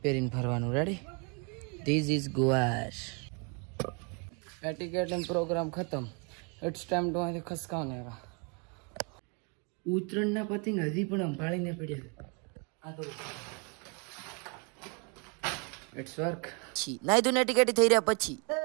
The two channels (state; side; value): quieter; left; 34.7 dB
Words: પહેરીને ફરવાનું. રેડી? ધીસ ઇઝ ગુવાર. એટિકેટિંગ પ્રોગ્રામ ખતમ. ઇટ્સ ટાઈમ ટુ અહીંથી ખસકાવને. ઉત્તરાયણના પતંગ હજી પણ સંભાળીને પડ્યા. આ તો ઇટ્સ વર્ક. નાઈ ધોઈને એટિકેટી થઈ રહ્યા પછી